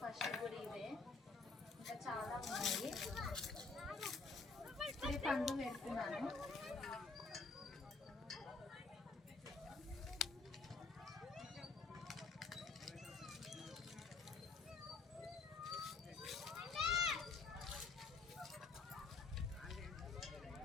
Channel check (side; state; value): right; quieter; 4.1 dB